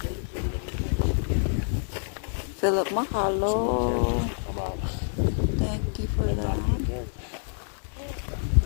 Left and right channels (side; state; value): right; silent; 60 dB below the other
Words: Philip, mahalo. Thank you for that.